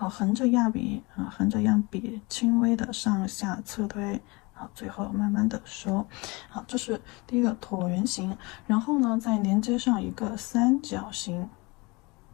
着压笔轻微的上下侧推，最后慢慢的收。这是第一个椭圆形。然后呢，再连接上一个三角形。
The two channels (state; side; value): quieter; right; 25.9 dB